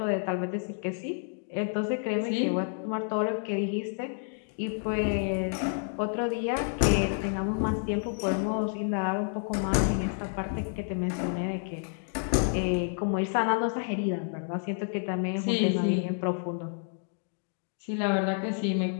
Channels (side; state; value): right; silent; 57 dB below the other